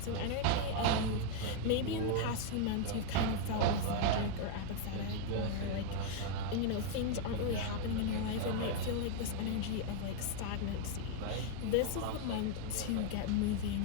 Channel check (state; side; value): different; both; correlation 0.00